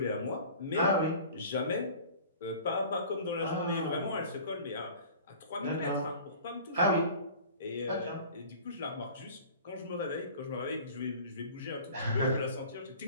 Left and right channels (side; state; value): both; inverted; correlation -0.43